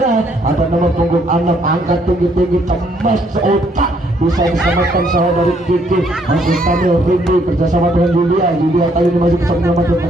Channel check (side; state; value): both; normal; correlation 0.68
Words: ada nomor punggung 6 angkat tinggi-tinggi, cemas seotak, bisa diselamatkan saudari Kiki, masih kami Rindi kerjasama dengan Yulia kali ini masih bisa menyelamatkan